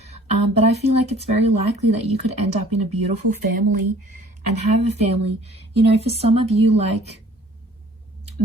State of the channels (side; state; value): both; normal; correlation 0.52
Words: But I feel like it's very likely that you could end up in a beautiful family and have a family. You know, for some of you, like